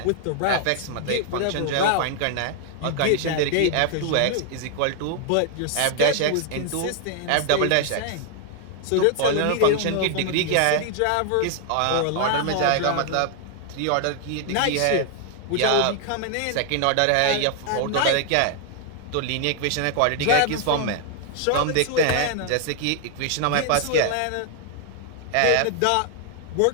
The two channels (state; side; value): different; both; correlation 0.00